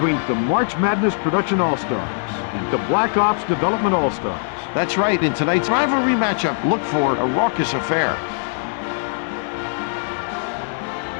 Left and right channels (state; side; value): silent; right; digital silence